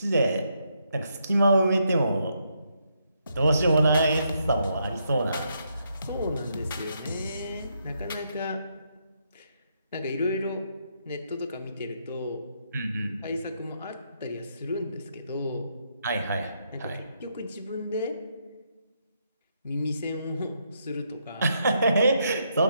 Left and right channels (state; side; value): inverted; both; correlation -0.77